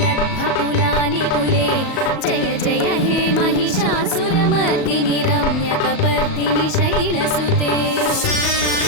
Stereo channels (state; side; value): late; right; 37 ms